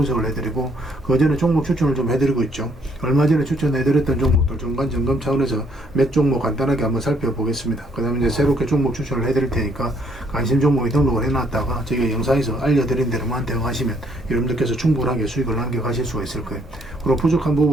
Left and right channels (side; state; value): both; normal; correlation 0.68